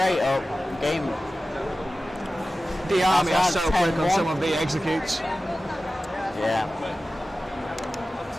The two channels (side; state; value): both; normal; correlation 0.95